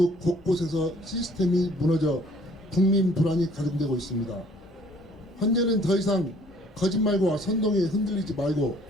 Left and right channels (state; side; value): normal; both; correlation 0.58